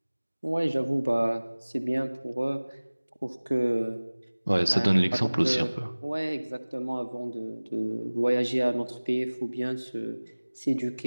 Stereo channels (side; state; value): both; inverted; correlation -1.00